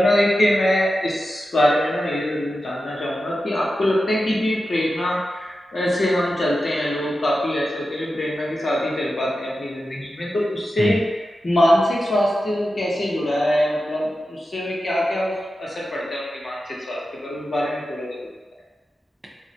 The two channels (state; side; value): normal; both; correlation 0.91